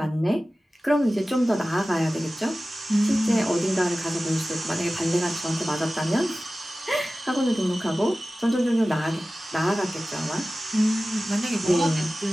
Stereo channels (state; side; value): normal; both; correlation 0.96